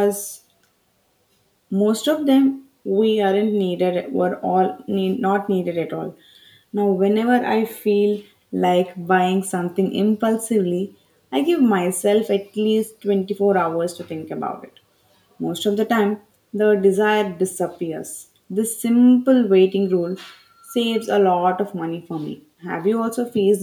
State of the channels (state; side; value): identical; both; correlation 1.00